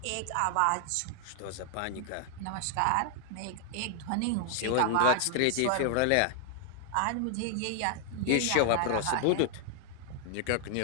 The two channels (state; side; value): different; both; correlation -0.01